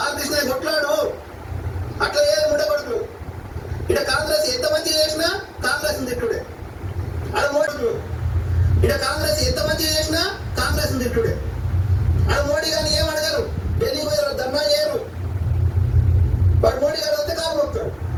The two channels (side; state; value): both; identical; correlation 1.00